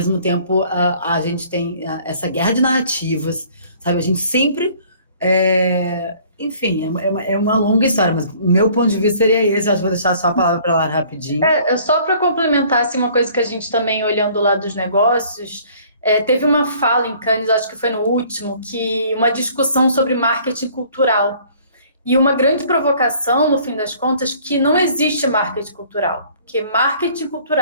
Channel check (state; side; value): inverted; both; correlation -0.55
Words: tempo, a gente tem essa guerra de narrativas, sabe? A gente sempre enfim, é uma longa história, mas o meu ponto de vista seria esse. Acho que vou deixar só a palavra para lá rapidinho. Só para complementar assim, uma coisa que a gente também, olhando lá dos negócios, teve uma fala em Cannes, acho que foi no último, que uma discussão sobre marketing cultural. E uma grande provocação, no fim das contas, que não existe marketing cultural, porque marketing